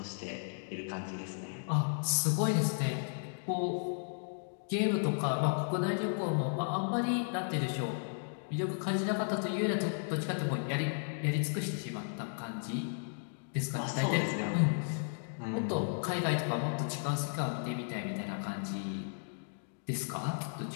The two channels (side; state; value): right; silent; digital silence